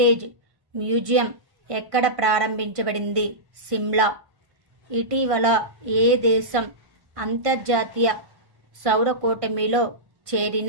museum ఎక్కడ ప్రారంభించబడింది? సిమ్లా. ఇటీవల ఏ దేశం అంతర్జాతీయ సౌర కూటమిలో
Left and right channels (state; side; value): late; left; 1.5 ms